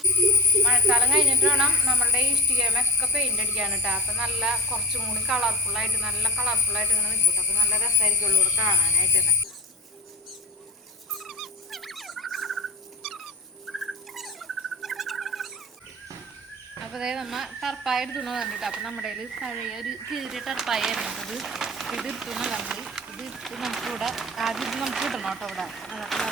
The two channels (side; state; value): both; normal; correlation 0.31